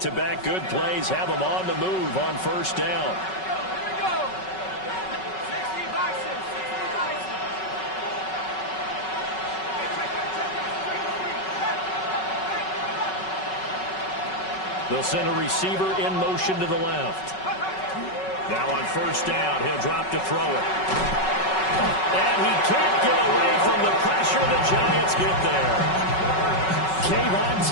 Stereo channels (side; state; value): right; late; 5.3 ms